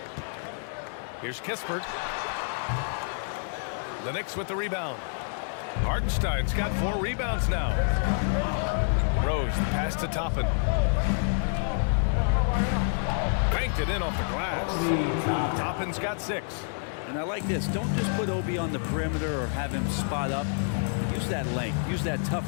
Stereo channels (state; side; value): silent; right; digital silence